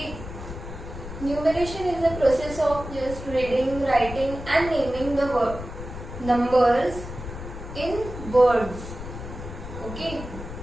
Numeration is the process of just reading, writing and naming the numbers in words. Okay.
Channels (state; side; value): noise; left; rumble, 10 dB below the sound